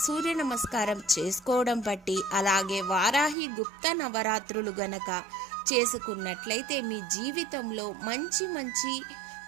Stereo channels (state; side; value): drops out; left; at 3.4 s